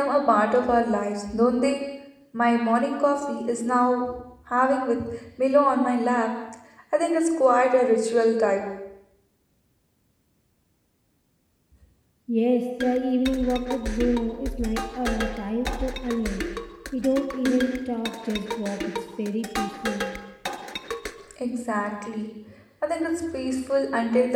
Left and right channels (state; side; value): identical; both; correlation 1.00